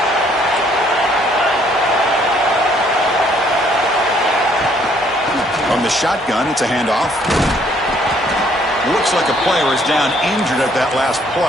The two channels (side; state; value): both; normal; correlation 0.64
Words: From the shotgun, it's a handoff. Looks like a player is down injured at that last